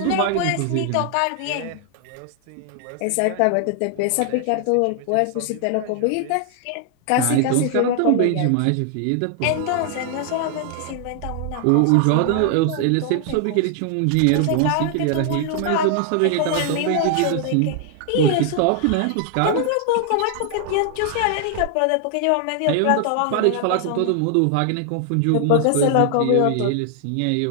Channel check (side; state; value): both; different; correlation 0.00